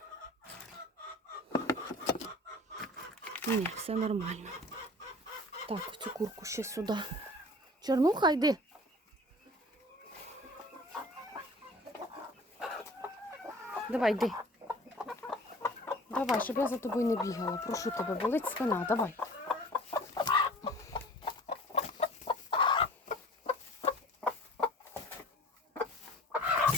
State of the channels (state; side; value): normal; both; correlation 0.44